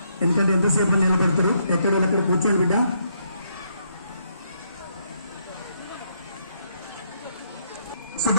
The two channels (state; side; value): inverted; both; correlation -0.74